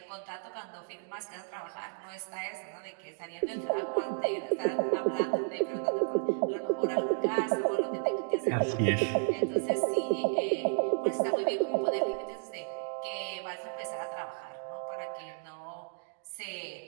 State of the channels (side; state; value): left; silent; 56 dB below the other